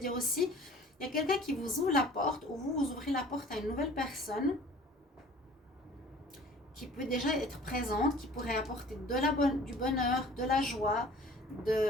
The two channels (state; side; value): normal; both; correlation 0.48